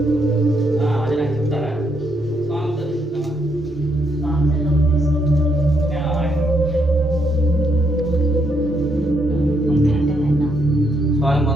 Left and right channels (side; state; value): both; normal; correlation 0.75